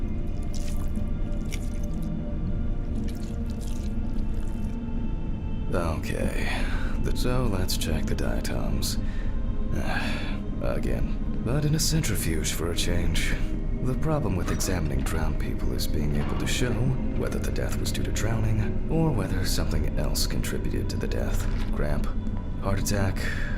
Okay, so let's check the diatoms. Again, but in a centrifuge for a change. The problem with examining drowned people is being able to show whether the death was due to drowning or whether something else contributed to the death. Cramp, heart attack,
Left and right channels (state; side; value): identical; both; correlation 1.00